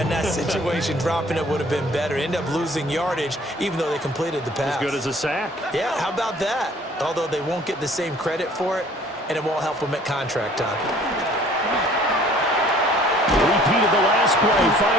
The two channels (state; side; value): normal; both; correlation 0.54